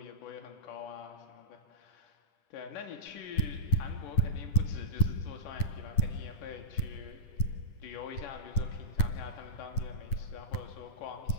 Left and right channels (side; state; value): right; late; 9.5 ms